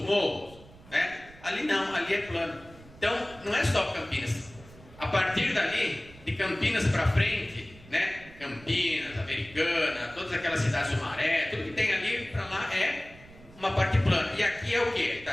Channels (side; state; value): right; noise; rumble, 21 dB below the sound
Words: morros, né? Ali não, ali é plano. Então, não é só Campinas. A partir dali, de Campinas para frente, né? Campinas, Americana, todas aquelas cidades do Maré, tudo que tem ali para lá é uma parte plana. E aqui é o que?